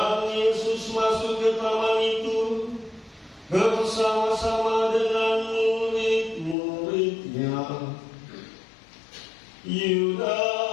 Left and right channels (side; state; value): right; drops out; at 6.6 s